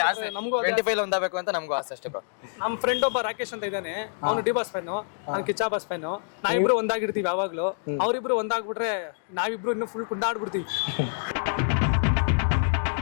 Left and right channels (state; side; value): silent; right; digital silence